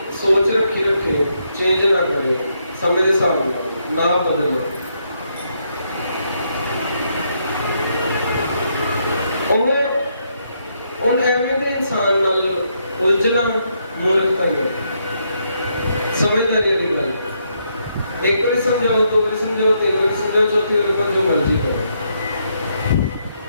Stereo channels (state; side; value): inverted; both; correlation -0.77